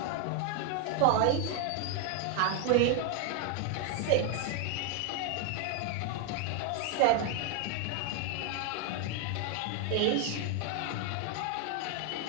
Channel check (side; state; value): both; different; correlation 0.01